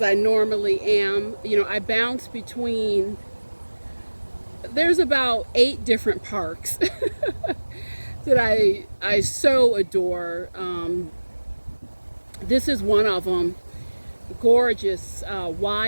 normally am. You know, I bounce between, there's about 8 different parks that I so adore. This is one of them. Gorgeous,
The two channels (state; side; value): inverted; both; correlation -1.00